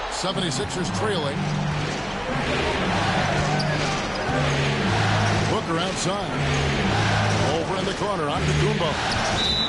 76ers trailing. Booker outside. Over in the corner on Gumbo.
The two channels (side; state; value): both; identical; correlation 1.00